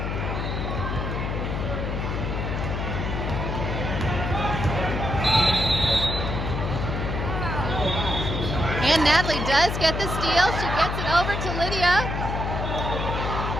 And Natalie does get the steal. She gets it over to Lydia.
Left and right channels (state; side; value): noise; left; hum, 2 dB below the sound